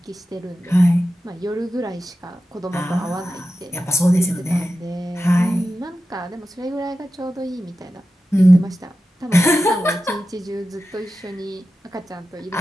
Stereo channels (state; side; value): normal; both; correlation 0.91